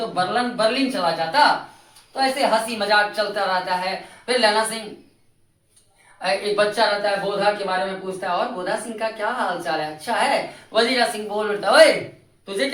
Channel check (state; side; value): identical; both; correlation 1.00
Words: बर्लिन चला जाता। तो ऐसे हंसी मजाक चलता रहता है। फिर लहना सिंह एक बच्चा रहता है बोधा के बारे में पूछता है, और बोधा सिंह का क्या हाल चाल है? अच्छा है। वजीरा सिंह बोल उठता है तुझे